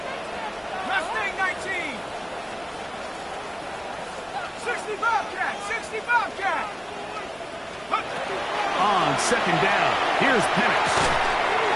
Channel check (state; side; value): identical; both; correlation 1.00